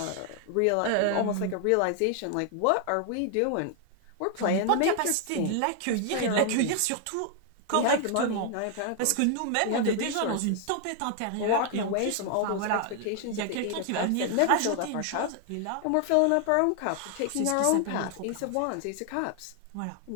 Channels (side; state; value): both; different; correlation 0.00